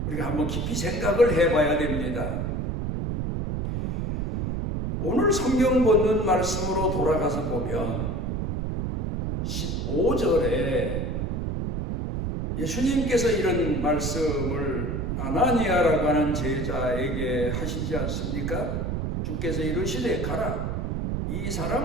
우리가 한번 깊이 생각을 해봐야 됩니다. 오늘 성경 본문 말씀으로 돌아가서 보면 15절에 예수님께서 이런 말씀을 아나니아라고 하는 제자에게 하시지 않습니까? 주께서 이르시되 가라. 이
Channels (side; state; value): right; noise; rumble, 2 dB below the sound